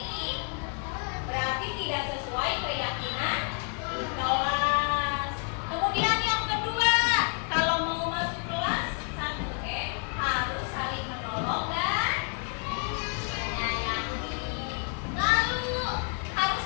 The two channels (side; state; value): right; quieter; 39.3 dB